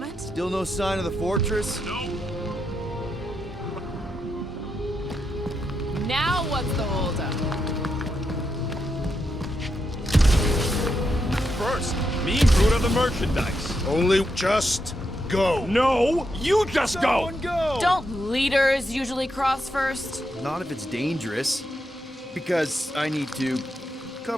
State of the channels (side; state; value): both; normal; correlation 0.83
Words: Still no sign of the fortress? No. Now what's the holdup? First, me and Groot are the merchandise. Only just go. No, you just go! Don't leaders usually cross first? Not if it's dangerous. Because I need to